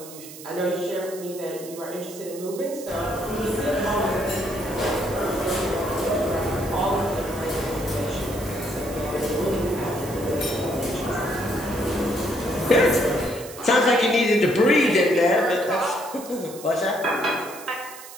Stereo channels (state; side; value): noise; right; hiss, 15 dB below the sound